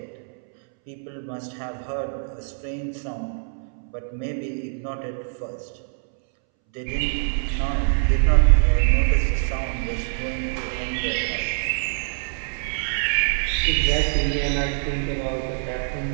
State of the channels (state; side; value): silent; left; 62 dB below the other